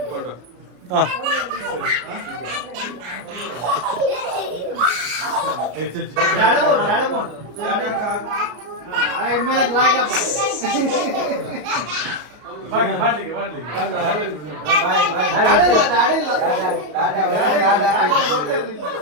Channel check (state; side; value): late; left; 33 ms